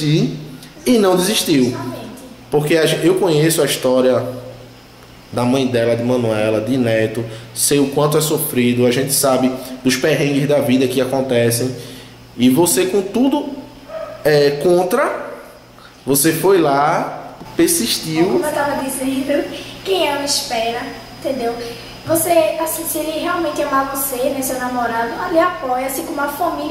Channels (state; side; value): identical; both; correlation 1.00